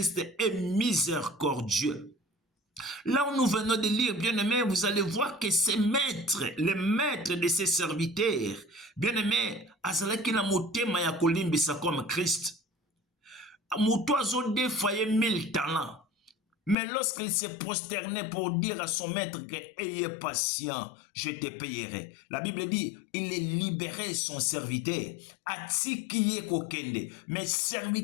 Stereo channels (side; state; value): right; drops out; at 16.8 s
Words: est miséricordieux. Là où nous venons de lire, bien-aimé, vous allez voir que ces maîtres, les maîtres de ces serviteurs, bien-aimé, azalaki na motema ya kolimbisa comme Christ. Moto azo défaillé 1000 talents. Mais lorsqu'il s'est prosterné pour dire à son maître que ayez patient, je te payerai. La Bible dit, il est libéré son serviteur. Atikiye kokende. Mais